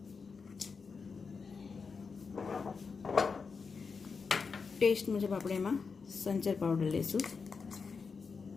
ટેસ્ટ મુજબ આપણે એમાં સંચર પાવડર લઈશું,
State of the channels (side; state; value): right; quieter; 5.1 dB